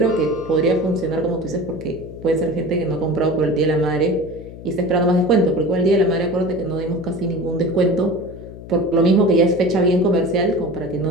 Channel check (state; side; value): noise; left; hum, 14 dB below the sound